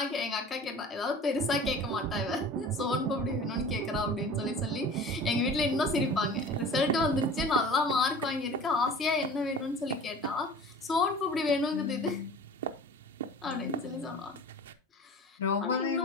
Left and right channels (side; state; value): both; normal; correlation 0.41